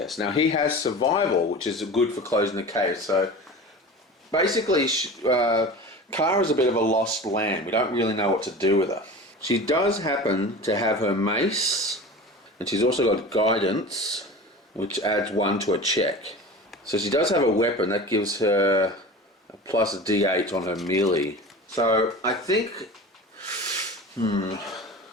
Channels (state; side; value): normal; both; correlation 0.34